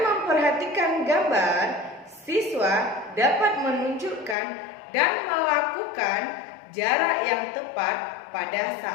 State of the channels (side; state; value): right; drops out; at 4.4 s